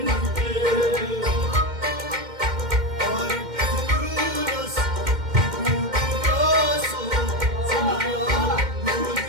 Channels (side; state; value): left; late; 2.1 ms